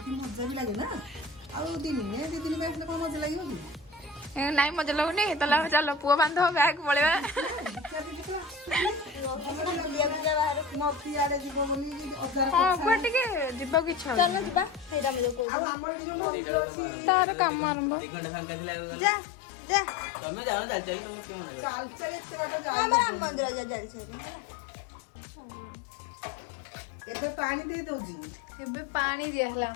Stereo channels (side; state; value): right; drops out; at 15.5 s